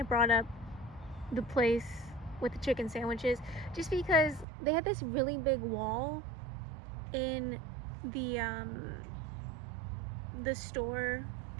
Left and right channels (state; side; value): drops out; left; at 4.5 s